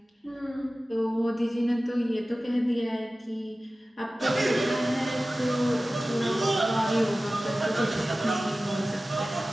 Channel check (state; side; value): normal; both; correlation 0.96